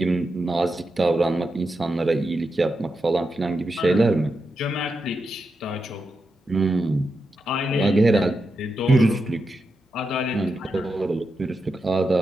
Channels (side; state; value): both; normal; correlation 0.87